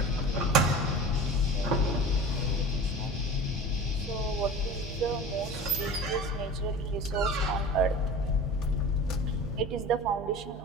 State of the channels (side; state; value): both; normal; correlation 0.36